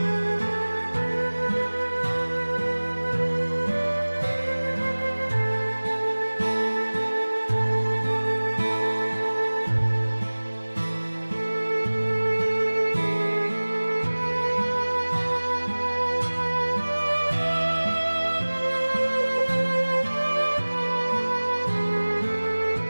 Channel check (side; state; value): both; inverted; correlation -1.00